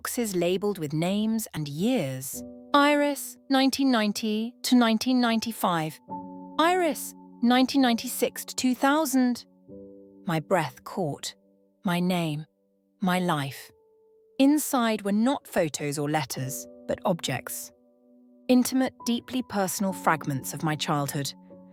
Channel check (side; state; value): both; identical; correlation 1.00